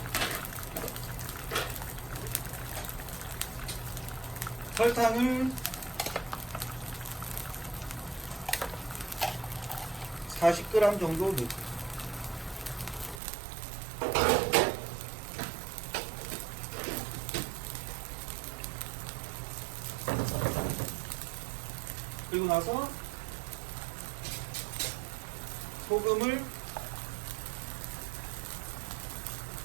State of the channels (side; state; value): left; drops out; at 13.2 s